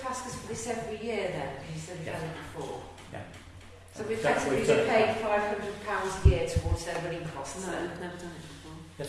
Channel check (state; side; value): identical; both; correlation 1.00